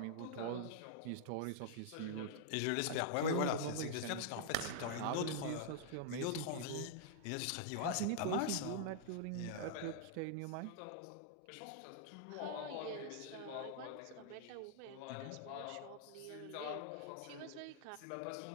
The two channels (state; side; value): different; both; correlation -0.01